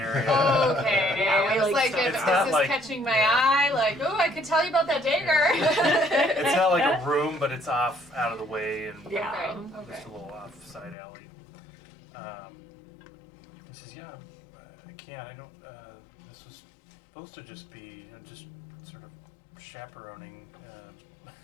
Okay, Yeah, I was like like, so. if, It's is not this like- catching my eye? Like, oh, I could tell you about that dagger. It's not like a room, but it's off out of the way and Yeah. Okay. just a little off side alley. He says, yeah, I can't. I don't. This was supposed to just be just sort of chaperoning.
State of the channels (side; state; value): right; drops out; at 11.0 s